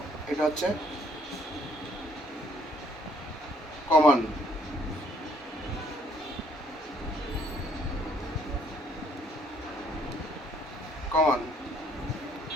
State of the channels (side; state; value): both; normal; correlation 0.65